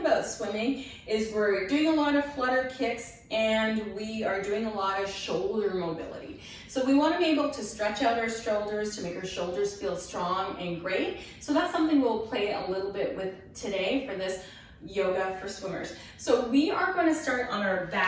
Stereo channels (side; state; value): both; identical; correlation 1.00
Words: swimming is we're doing a lot of flutter kicks and we are doing a lot of shoulder mobility. So we want to be able to stretch out our shoulders to make our shoulders feel strong and great. So that's something we'll play a little bit with today for this yoga for swimmers. So we are going to start on our